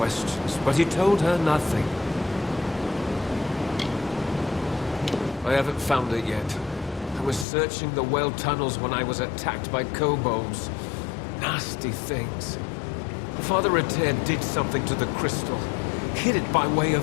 but he told her nothing. I haven't found it yet. I was searching the well tunnels when I was attacked by kobolds. Nasty things. Father Etir did something to the crystal. Hid it by way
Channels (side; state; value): right; drops out; at 7.5 s